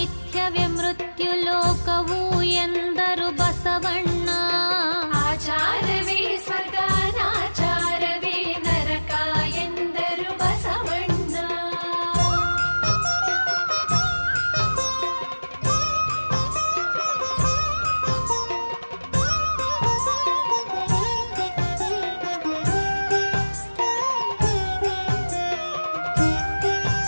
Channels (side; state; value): both; inverted; correlation -1.00